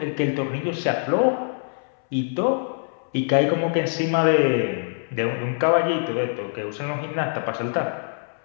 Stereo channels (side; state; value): right; silent; 63 dB below the other